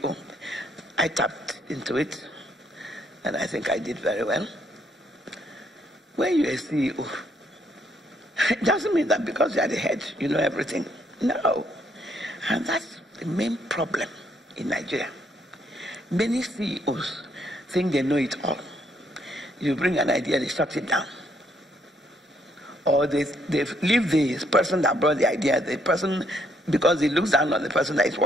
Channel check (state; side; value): normal; both; correlation 0.71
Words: I tapped into it, and I think I did very well. When you're a CEO, it doesn't mean that because you are the head, you know everything. No. And that's the main problem in Nigeria. Many CEOs think they know it all. You bring an idea, they shut it down. Or they leave the person that brought the idea, the person, because he looks down on the person that is